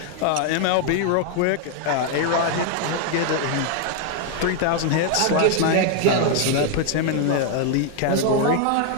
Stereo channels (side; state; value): both; different; correlation 0.00